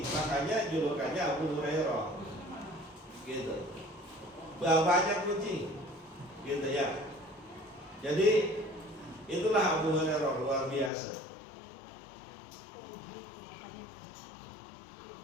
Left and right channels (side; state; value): right; drops out; at 10.9 s